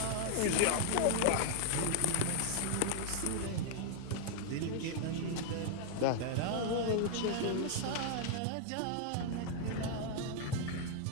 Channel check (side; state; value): both; different; correlation 0.00